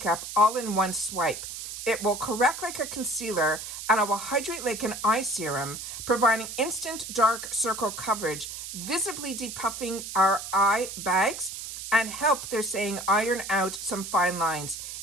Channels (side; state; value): right; noise; hiss, 8 dB below the sound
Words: all in one swipe. It will correct like a concealer, and it will hydrate like an eye serum, providing instant dark circle coverage, visibly depuffing our eye bags, and help, they're saying, iron out some fine lines.